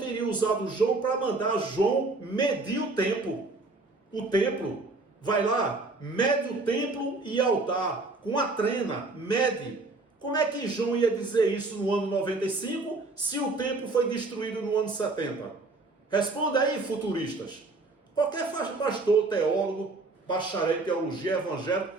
usado João para mandar João medir o tempo. O templo. Vai lá, mede o templo e altar. Com a trena, mede. Como é que João ia dizer isso no ano 95, se o templo foi destruído no ano 70? Responda aí, futuristas. Qualquer pastor, teólogo, bacharel em teologia, evangélico,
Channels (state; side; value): quieter; left; 3.4 dB